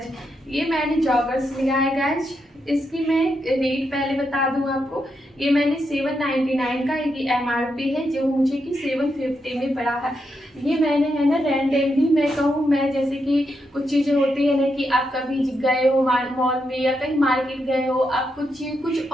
ये मैंने जॉगर्स लिया है गाइज। इसकी मैं रेट पहले बता दूं आपको, ये मैंने 799 का एक MRP है, जो मुझे कि 750 में पड़ा है। ये मैंने है ना रैंडमली, मैं कहूँ मैं, जैसे कि कुछ चीज़ें होती है ना कि आप कभी गए हो मॉल में या कहीं मार्केट गए हो, आप कुछ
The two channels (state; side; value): normal; both; correlation 0.83